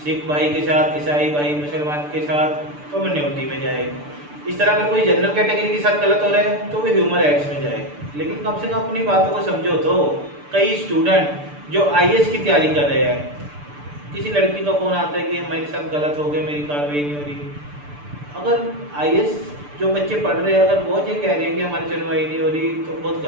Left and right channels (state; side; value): late; left; 6.8 ms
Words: सिख भाई के साथ, ईसाई भाई, मुसलमान के साथ, तो माइनॉरिटी में जाए। इस तरह का कोई जनरल कैटेगरी के साथ गलत हो रहा है तो वो ह्यूमन राइट्स में जाए। लेकिन कम से कम अपनी बातों को समझो। तो कई स्टूडेंट जो आईएएस की तैयारी कर रहे हैं, किसी लड़की का फ़ोन आता है कि मेरे साथ गलत हो गया, मेरी कार्रवाई नहीं हो रही। अगर आईएएस जो बच्चे पढ़ रहे हैं, अगर वो ये कह रहे हैं कि हमारी सुनवाई नहीं हो रही, तो बहुत